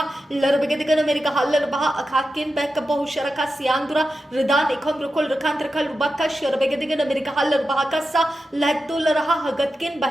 लरबेगतिगन America hauler बहा अखाकिन back बहु शरका से आंदुरा रदान एकम रखोल रखान रखाल रुबाका शरबेगतिगन America hauler bahaka सा लहतुल रहा हगतकिन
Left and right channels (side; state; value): both; normal; correlation 0.90